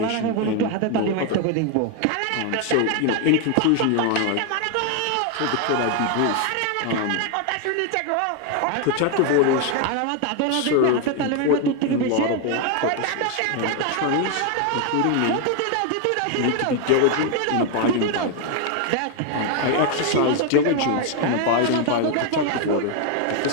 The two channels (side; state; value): both; different; correlation 0.01